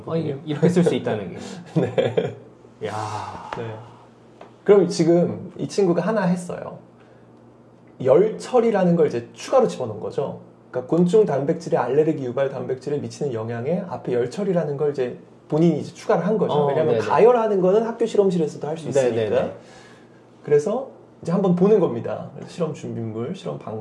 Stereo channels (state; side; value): identical; both; correlation 1.00